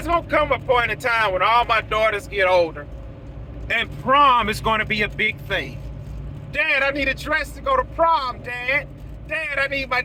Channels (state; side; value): identical; both; correlation 1.00